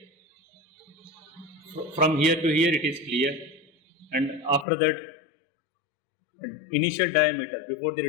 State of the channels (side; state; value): right; drops out; at 4.7 s